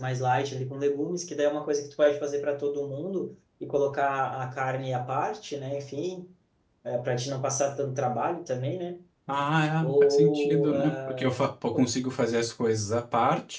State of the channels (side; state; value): both; identical; correlation 1.00